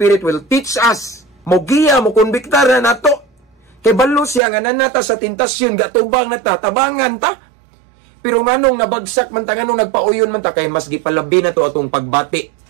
will teach us. Mogiya, mo konbiktar na nato. Kay balo siya nga nanata sa tentasyon, gatubang na ta, tabangan ta. Pero nganong nabagsak man ta, nganong nagpauyon man ta, kay mas gipalabi na to atong pagbati.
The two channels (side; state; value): left; drops out; at 4.4 s